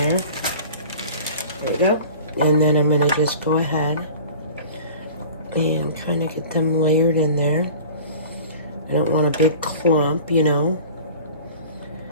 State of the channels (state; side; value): inverted; both; correlation -0.41